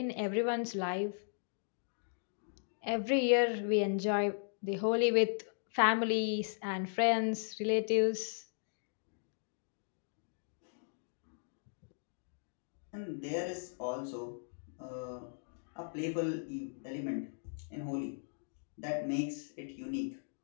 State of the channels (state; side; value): silent; right; digital silence